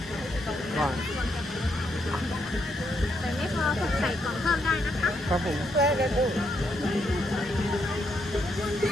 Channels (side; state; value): both; normal; correlation 0.77